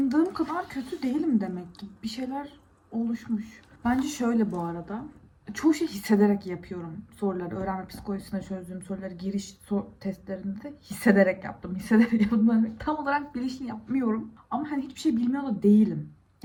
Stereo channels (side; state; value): both; identical; correlation 1.00